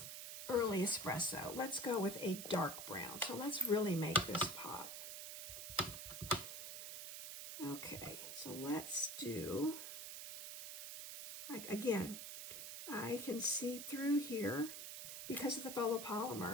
early espresso. Let's go with a dark brown. So let's really make this pop. Okay, so let's do, like, again, I can see through here, because of the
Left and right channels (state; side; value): noise; right; hiss, 7 dB below the sound